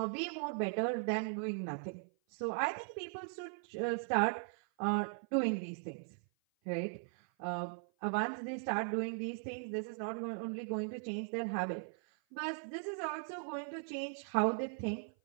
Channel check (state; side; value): silent; left; 52 dB below the other